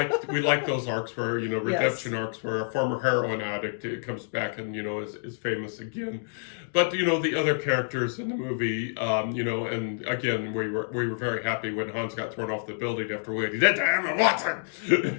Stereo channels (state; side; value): silent; right; digital silence